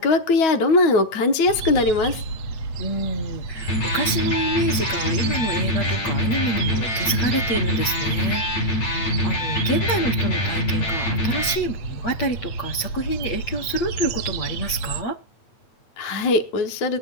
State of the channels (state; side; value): late; right; 8.6 ms